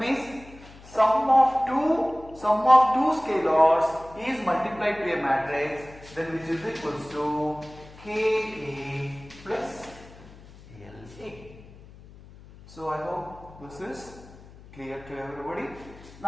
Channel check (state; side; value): noise; left; hum, 20 dB below the sound